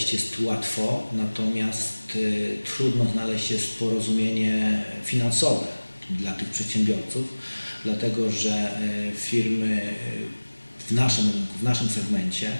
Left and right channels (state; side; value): inverted; both; correlation -1.00